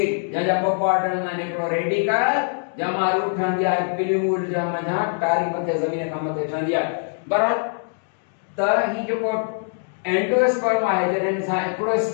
जंहिंजा ॿ पार्ट हूंदा आहिनि. हिकिड़ो रेडिकल जंहिंमां रूट ठहंदी आहे पिल्यूल जा मथां टारी मथे ज़मीन खां मथे ठहंदी आहे. बराबरि. त ही जेको एंडोस्पर्म आहे जॾहिं सां हिकिड़ो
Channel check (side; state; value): right; silent; digital silence